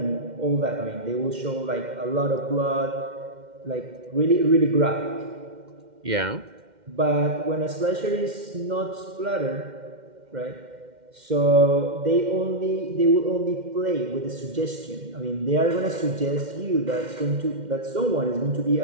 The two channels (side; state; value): left; late; 2.1 ms